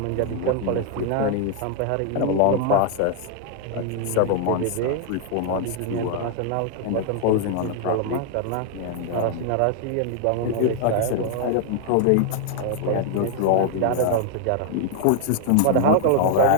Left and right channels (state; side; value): different; both; correlation 0.00